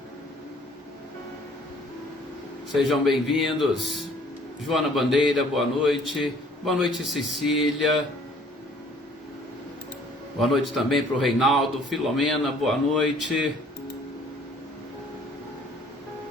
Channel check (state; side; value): normal; both; correlation 0.57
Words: Sejam bem-vindos. Joana Bandeira, boa noite. Boa noite, Cecília. Boa noite também para o Reinaldo. Filomena, boa noite.